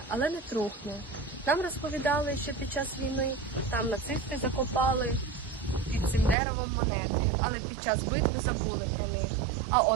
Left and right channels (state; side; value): drops out; left; at 6.4 s